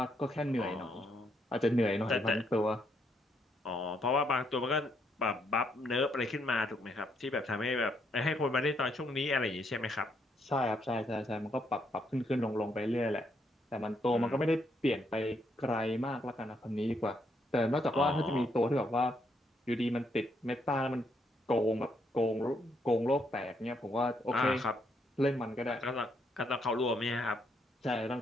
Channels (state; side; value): normal; both; correlation 0.75